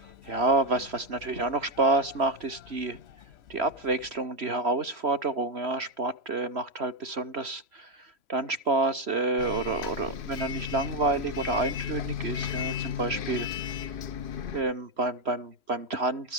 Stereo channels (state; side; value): late; left; 3.1 ms